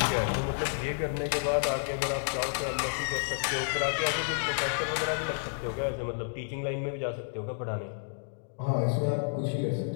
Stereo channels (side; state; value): right; silent; digital silence